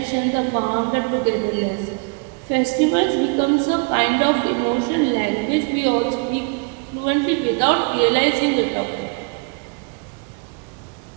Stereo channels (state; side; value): quieter; left; 33.6 dB